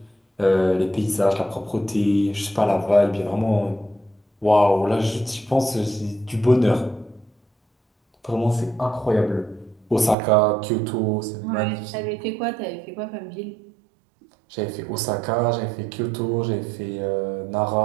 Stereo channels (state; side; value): drops out; left; at 10.2 s